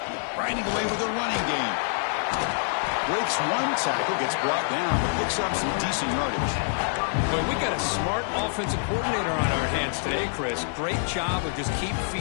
Grinding away with a running game. Breaks one tackle, gets brought down, but picks up some decent yardage. Well, we got a smart offensive coordinator on our hands today, Chris. Great job of just keep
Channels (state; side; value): silent; right; digital silence